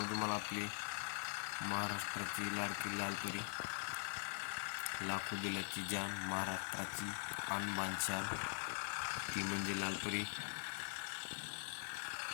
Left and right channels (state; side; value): silent; right; digital silence